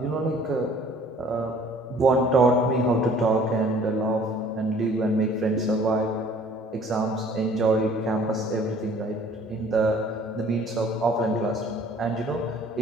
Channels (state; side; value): normal; both; correlation 0.53